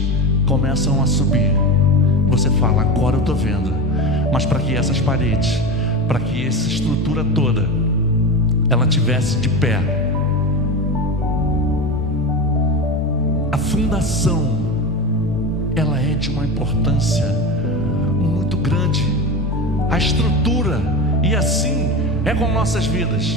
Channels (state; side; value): normal; both; correlation 0.23